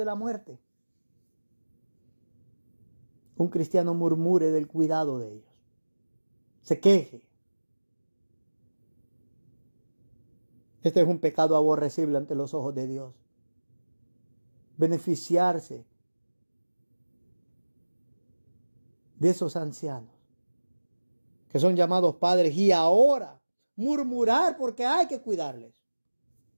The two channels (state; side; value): inverted; both; correlation -1.00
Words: la muerte, un cristiano murmure del cuidado de ellos. Se queje. Este es un pecado aborrecible ante los ojos de Dios. Beneficiarse de esos ancianos que son llamados padres y ahora murmurar porque hay que cuidarles.